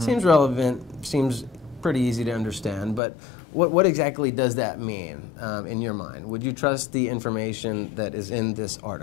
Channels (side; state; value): right; drops out; at 3.0 s